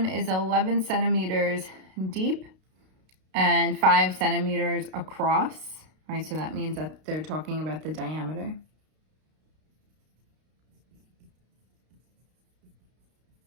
is 11 centimeters deep and 5 centimeters across. Right, so that means that they're talking about the diameter.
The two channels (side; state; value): left; late; 32 ms